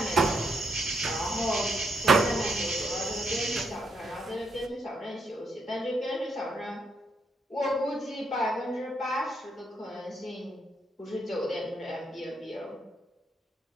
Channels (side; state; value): both; normal; correlation 0.77